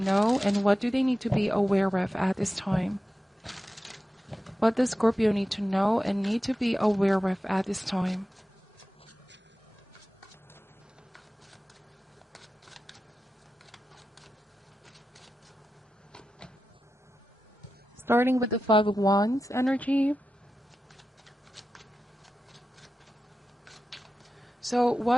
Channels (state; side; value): normal; both; correlation 0.92